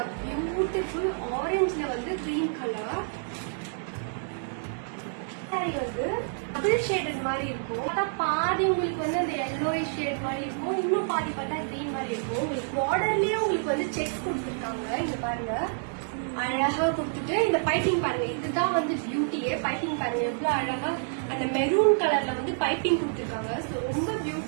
பியூட்டிஃபுல் ஆரஞ்சுல வந்து கிரீன் கலர். சாரி வந்து டபுள் ஷேடட் மாதிரி இருக்கும். பார்த்தா பாதி உங்களுக்கு வந்து அந்த yellowish ஷேட் மாதிரி இருக்கும், இன்னும் பாதி பார்த்தா கிரீன் மாதிரி இருக்கும். உங்களுக்கு பார்டர்லயே உங்களுக்கு வந்து செக்ஸ் கொடுத்துருக்காங்க. இங்க பாருங்க அழகா கொடுத்துட்டு இந்த பைப்பிங் பாருங்க, இதுதான் வந்து பியூட்டியே. பைப்பிங் பாருங்க எவ்வளவு அழகா அந்த மெரூன் கலர்ல வந்து பைப்பிங் கொடுத்துருக்காங்க. ரொம்ப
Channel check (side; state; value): left; silent; digital silence